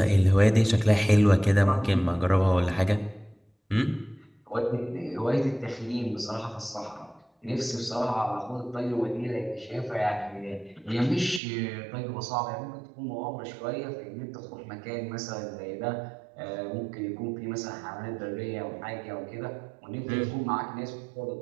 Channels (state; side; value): drops out; left; at 11.4 s